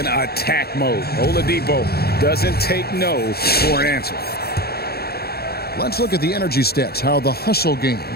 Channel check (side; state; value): right; late; 0.46 ms